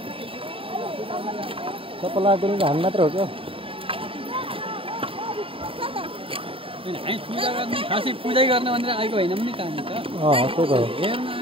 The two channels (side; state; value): left; late; 0.26 ms